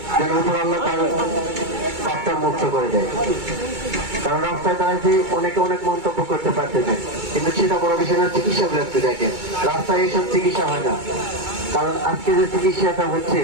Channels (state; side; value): late; left; 2.2 ms